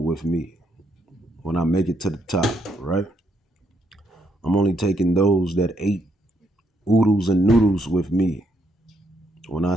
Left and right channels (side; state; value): both; normal; correlation 0.75